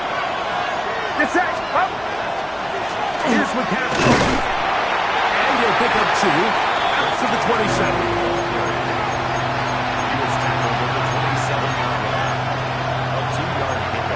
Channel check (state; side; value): noise; left; hum, 26 dB below the sound